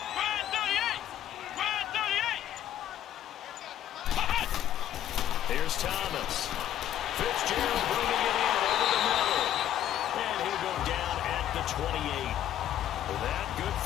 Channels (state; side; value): quieter; right; 11.5 dB